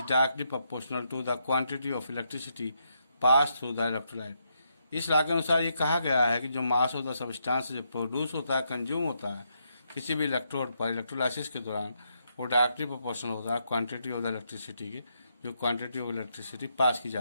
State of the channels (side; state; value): both; inverted; correlation -0.79